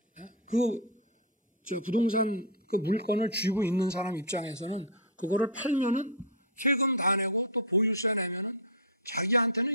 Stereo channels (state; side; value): normal; both; correlation -0.04